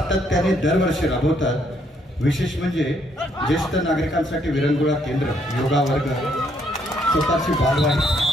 दरवर्षी राबवतात. विशेष म्हणजे ज्येष्ठ नागरिकांसाठी विरंगुळा केंद्र, योगा वर्ग, स्वतःची बालवाडी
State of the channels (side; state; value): both; normal; correlation 0.71